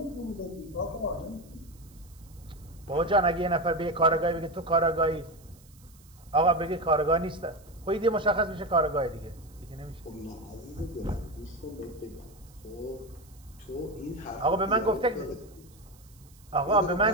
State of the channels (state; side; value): noise; right; hiss, 27 dB below the sound